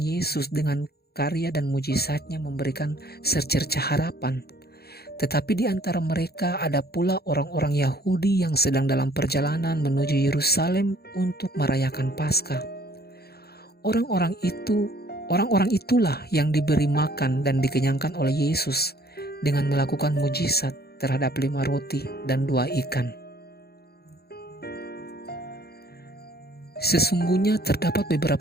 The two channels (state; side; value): late; right; 0.46 ms